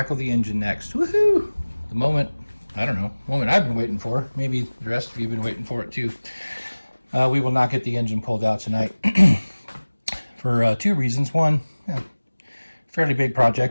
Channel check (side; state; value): both; inverted; correlation -1.00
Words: the engine next. Woohoo! The moment I've been waiting for. Maybe the rest of you have been waiting for it too. We will not get the engine pulled out tonight for two reasons. One, fairly big